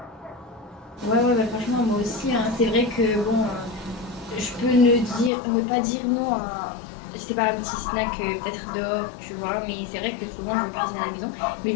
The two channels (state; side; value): drops out; right; at 5.3 s